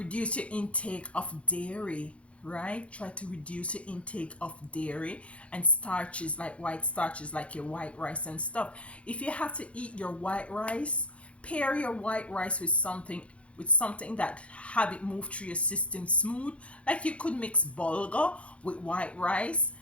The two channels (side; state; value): right; late; 0.062 ms